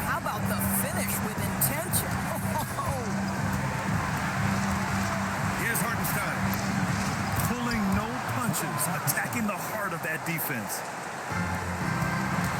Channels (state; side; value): identical; both; correlation 1.00